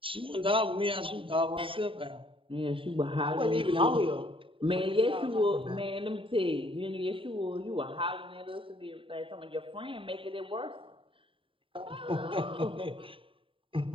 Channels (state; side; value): late; left; 0.25 ms